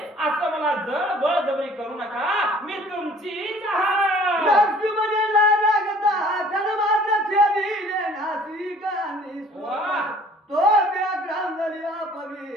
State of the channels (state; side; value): normal; both; correlation 0.53